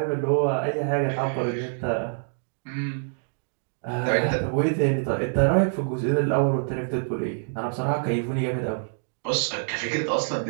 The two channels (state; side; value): silent; left; digital silence